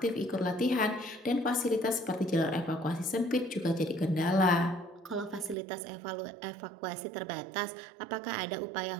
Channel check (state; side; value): drops out; left; at 5.6 s